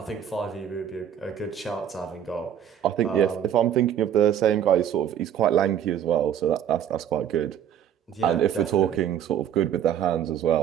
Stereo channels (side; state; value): left; quieter; 9.6 dB